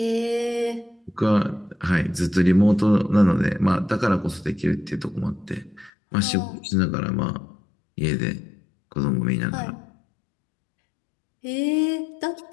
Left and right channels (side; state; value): right; drops out; at 5.9 s